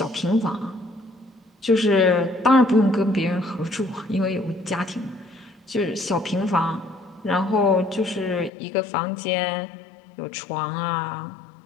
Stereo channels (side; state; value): right; drops out; at 8.5 s